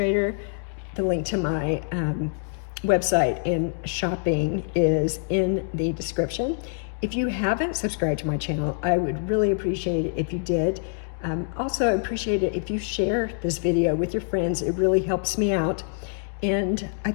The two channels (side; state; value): right; silent; digital silence